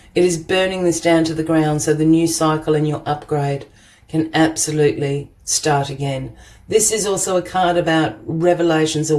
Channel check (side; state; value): both; identical; correlation 1.00